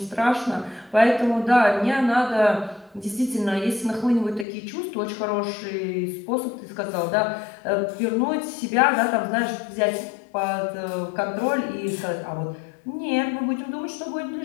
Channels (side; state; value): right; drops out; at 4.5 s